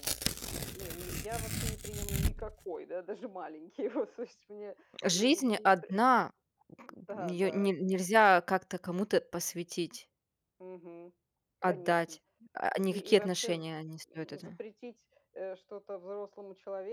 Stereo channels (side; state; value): both; identical; correlation 1.00